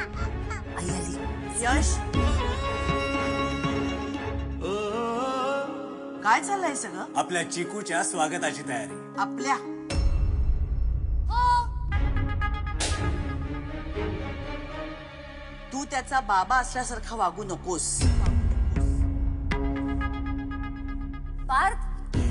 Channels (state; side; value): identical; both; correlation 1.00